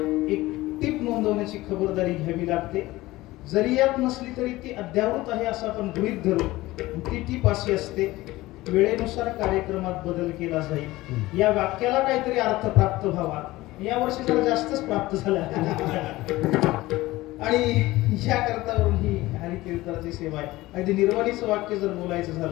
एक टीप नोंदवण्याची खबरदारी घ्यावी लागते. जरी यात नसली तरी ती अद्यावृत आहे असं आपण गृहीत धरू. ती टीप अशी असते, वेळेनुसार कार्यक्रमात बदल केला जाईल. या वाक्याला काहीतरी अर्थ प्राप्त व्हावा. या वर्षी जरा जास्तच प्राप्त झाला आणि या करतावरून ही हरिकीर्तनाची सेवा आहे. अगदी निर्वाणीचं वाक्य जर बोलायचं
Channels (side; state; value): right; quieter; 18.5 dB